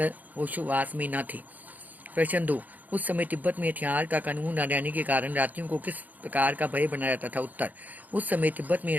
होशोवास में न थे। प्रश्न 2। उस समय तिब्बत में हथियार का कानून न रहने के कारण रात्रियों को किस प्रकार का भय बना रहता था? उत्तर। उस समय तिब्बत में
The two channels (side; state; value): left; late; 0.081 ms